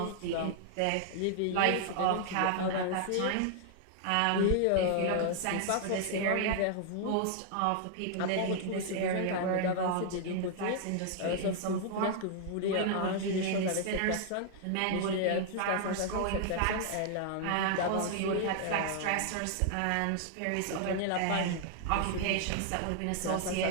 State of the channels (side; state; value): both; different; correlation 0.00